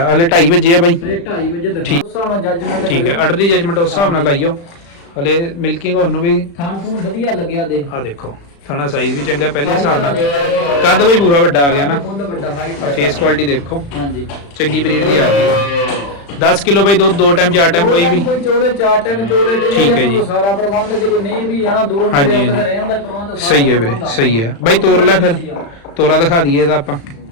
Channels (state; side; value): late; right; 35 ms